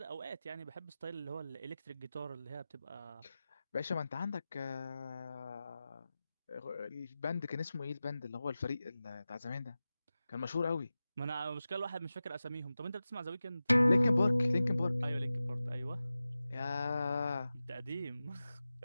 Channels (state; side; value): inverted; both; correlation -0.95